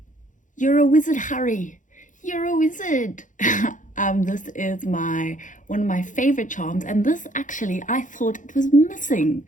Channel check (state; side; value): late; right; 0.37 ms